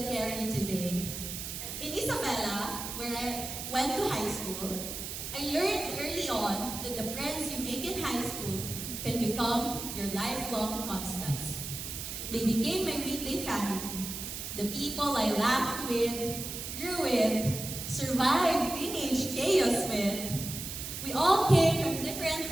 carry today. In Isabela, where I went to high school, I learned early on that the friends you make in high school can become your lifelong constants. They became my weekday family, the people I laughed with, grew with, survived teenage chaos with. We all came from different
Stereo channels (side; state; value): right; noise; hiss, 7 dB below the sound